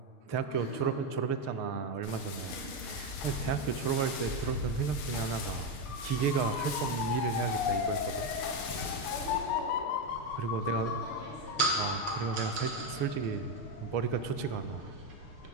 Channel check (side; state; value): right; late; 6.6 ms